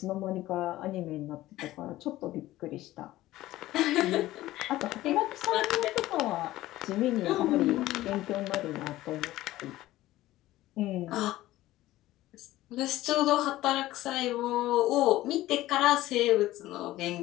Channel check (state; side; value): quieter; right; 16.1 dB